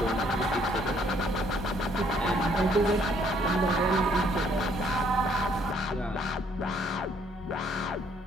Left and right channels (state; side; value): normal; both; correlation 0.65